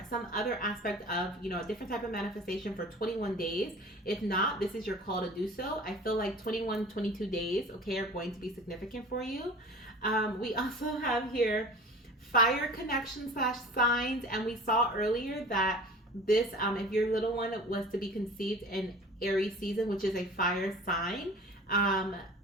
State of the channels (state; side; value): normal; both; correlation 0.42